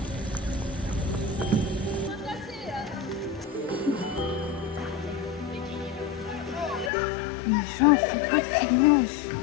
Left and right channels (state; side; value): drops out; right; at 6.9 s